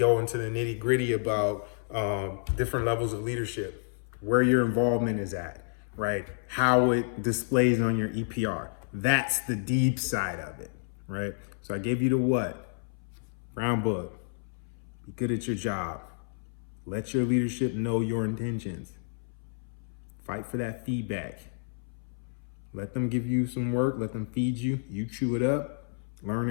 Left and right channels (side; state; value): right; silent; 58 dB below the other